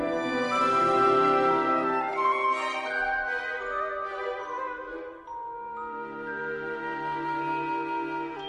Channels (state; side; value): identical; both; correlation 1.00